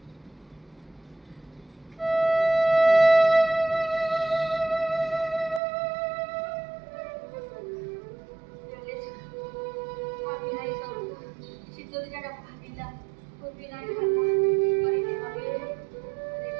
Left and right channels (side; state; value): left; drops out; at 5.6 s